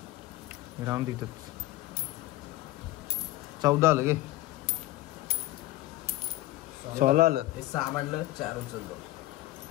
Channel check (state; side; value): quieter; right; 16.9 dB